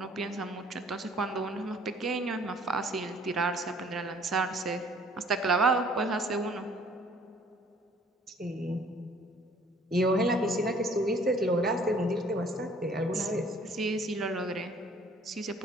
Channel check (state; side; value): normal; both; correlation 0.56